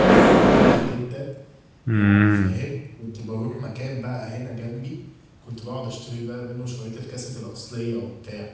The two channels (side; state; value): both; identical; correlation 1.00